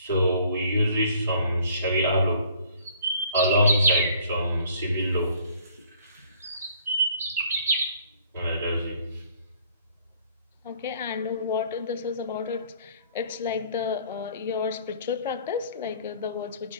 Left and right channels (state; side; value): inverted; both; correlation -0.58